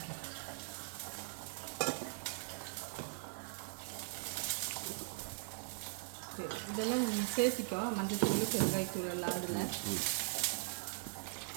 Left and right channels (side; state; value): left; silent; digital silence